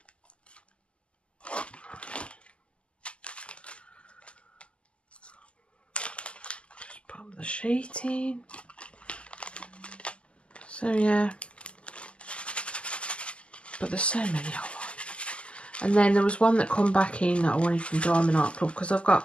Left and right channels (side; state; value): right; late; 0.055 ms